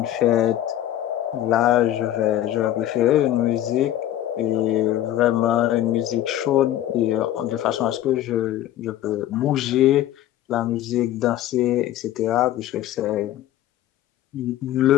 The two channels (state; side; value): quieter; right; 12.8 dB